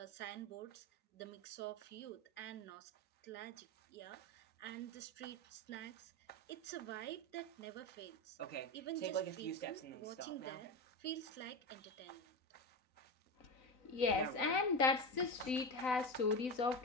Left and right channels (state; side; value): late; right; 3.9 ms